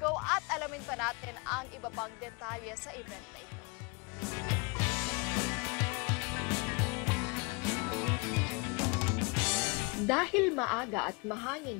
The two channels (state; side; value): quieter; right; 30.2 dB